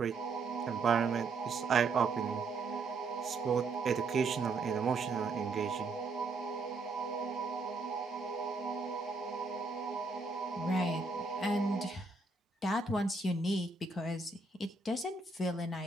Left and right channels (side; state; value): left; quieter; 3.8 dB